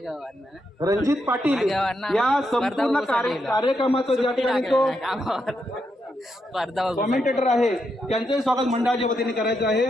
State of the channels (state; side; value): normal; both; correlation 0.82